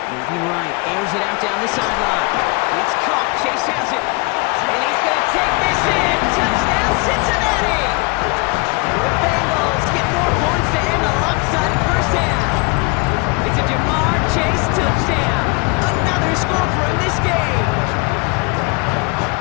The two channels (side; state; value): right; quieter; 28.5 dB